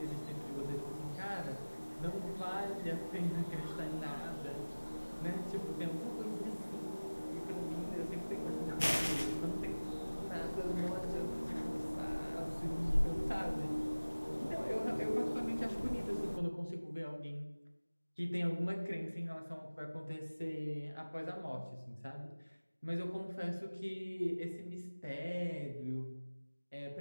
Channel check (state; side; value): inverted; both; correlation -1.00